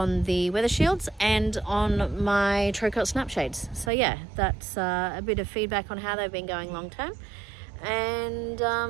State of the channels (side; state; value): left; drops out; at 3.9 s